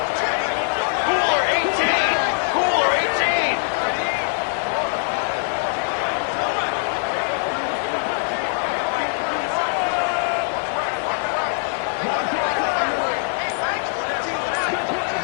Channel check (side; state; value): right; silent; 59 dB below the other